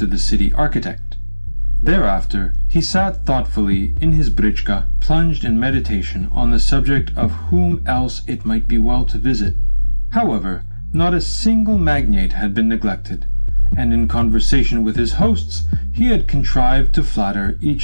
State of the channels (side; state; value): both; inverted; correlation -1.00